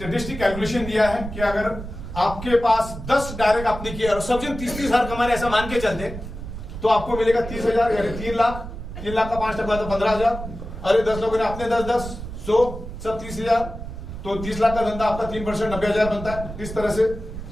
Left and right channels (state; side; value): noise; right; rumble, 9 dB below the sound